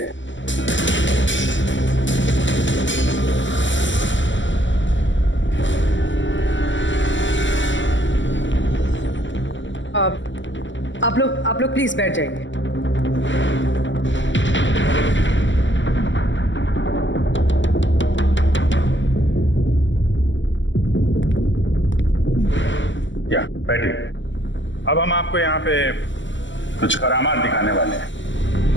आप लोग प्लीज बैठ जाइए। या बैठिए। अब हम आपको यहाँ पे कुछ करामात दिखाने वाले हैं।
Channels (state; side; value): late; right; 0.54 ms